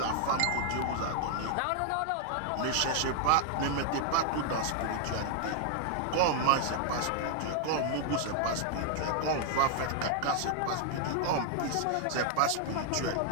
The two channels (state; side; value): different; both; correlation 0.00